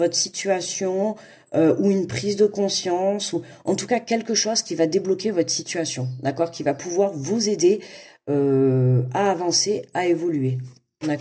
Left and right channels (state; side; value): identical; both; correlation 1.00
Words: situation ou une prise de conscience ou en tout cas quelque chose qui va débloquer votre situation, d'accord, qui va pouvoir vous aider à avancer, à évoluer,